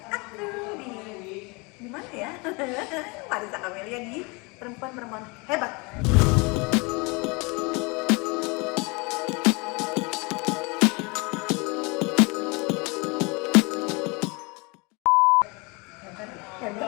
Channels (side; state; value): right; quieter; 28.5 dB